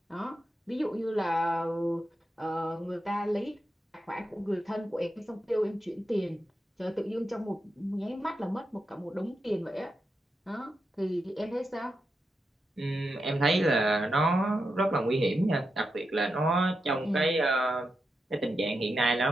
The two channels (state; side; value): normal; both; correlation 0.87